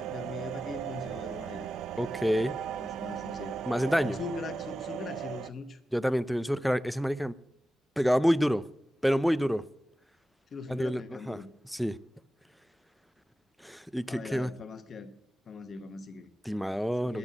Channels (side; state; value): both; normal; correlation 0.92